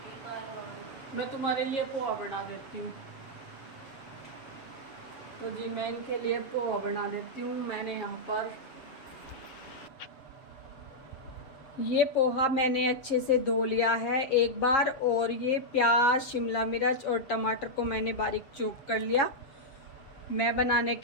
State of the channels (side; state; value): right; late; 7.4 ms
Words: बाल। मैं तुम्हारे लिए पोहा बना देती हूँ। तो जी मैं इनके लिए पोहा बना देती हूँ। मैंने यहाँ पर ये पोहा मैंने अच्छे से धो लिया है एक बार, और ये प्याज, शिमला मिर्च और टमाटर को मैंने बारीक चॉप कर लिया। मैं बनाने